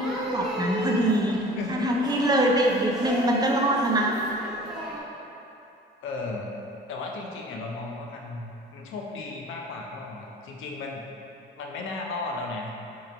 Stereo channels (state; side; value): normal; both; correlation 0.45